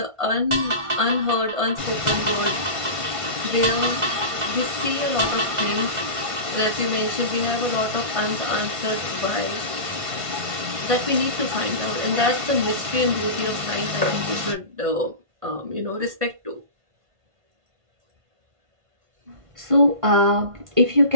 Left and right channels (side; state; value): left; late; 1.5 ms